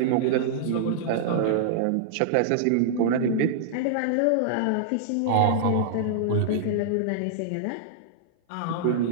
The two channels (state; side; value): different; both; correlation -0.02